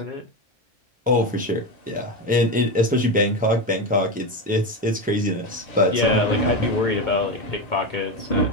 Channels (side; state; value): both; normal; correlation 0.16